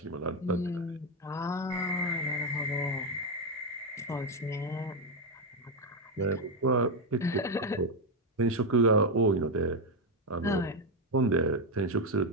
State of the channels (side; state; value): both; normal; correlation 0.06